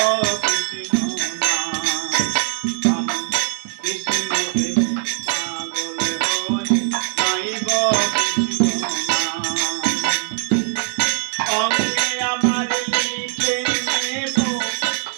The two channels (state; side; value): silent; left; 60 dB below the other